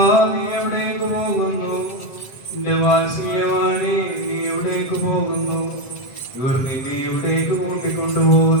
നീ എവിടേക്ക് പോകുന്നു? എന്റെ വാത്സല്യവാണി നീ എവിടേക്ക് പോകുന്നു? ഇവർ നിന്നെ എവിടേക്ക്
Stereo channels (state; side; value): late; right; 7.7 ms